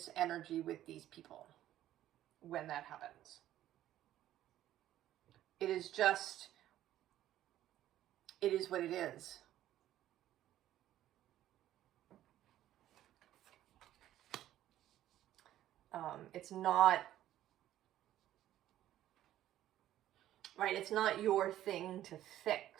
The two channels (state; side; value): quieter; left; 13.0 dB